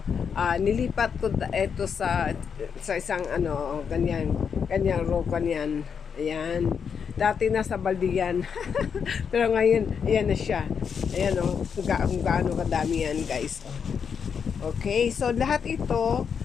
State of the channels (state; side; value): quieter; right; 6.7 dB